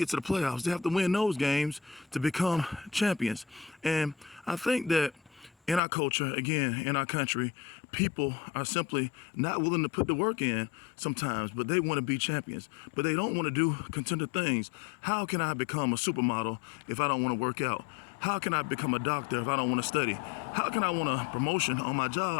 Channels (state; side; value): drops out; right; at 5.8 s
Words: to the playoffs, they have to win those games to become champions. And I think that in our culture, again, in our country, people are simply not willing to put the work in sometimes, but they want to be champions. But they don't want to do contender things. How can I become a supermodel if I don't want to work out? How can I become a doctor if I don't want to study? How can I want a promotion on my